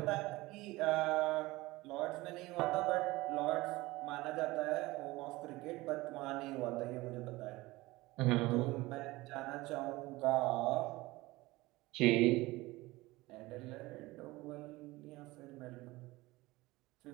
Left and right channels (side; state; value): left; quieter; 20.2 dB